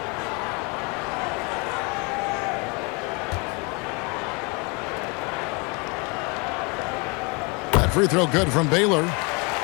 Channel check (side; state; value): right; quieter; 30.7 dB